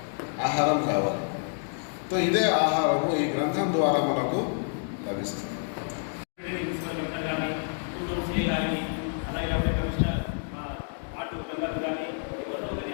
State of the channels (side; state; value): right; silent; digital silence